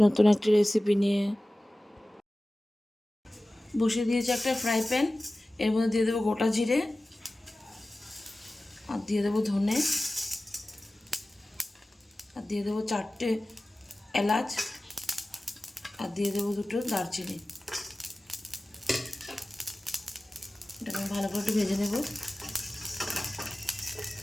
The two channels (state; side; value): normal; both; correlation 0.97